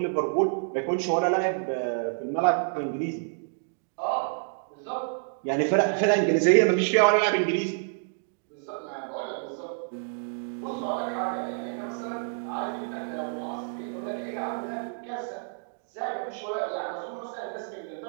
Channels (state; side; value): silent; left; digital silence